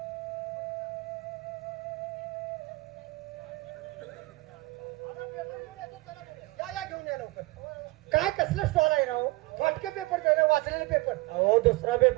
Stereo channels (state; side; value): quieter; left; 22.1 dB